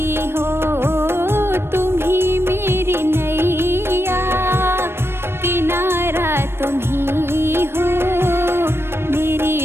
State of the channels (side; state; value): left; late; 0.12 ms